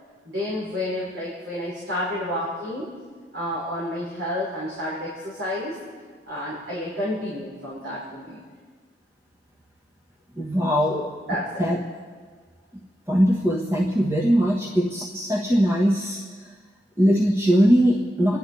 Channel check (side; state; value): both; normal; correlation 0.82